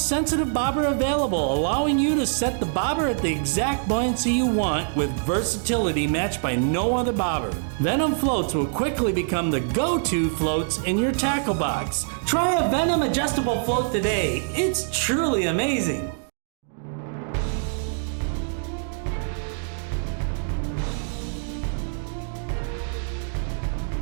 sensitive bobber available, allowing you to set the bobber at the exact buoyancy you want with versatility matched by no other bobber. Venom floats will quickly become the go-to floats in your tackle box. Try a Venom adjustable float today. It's truly amazing.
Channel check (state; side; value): silent; left; digital silence